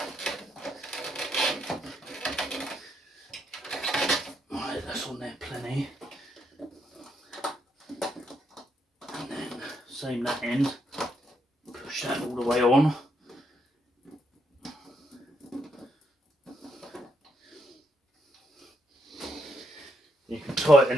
Right, that's on there plenty. And then same that end. Push that all the way on. You can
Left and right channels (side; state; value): both; normal; correlation 0.77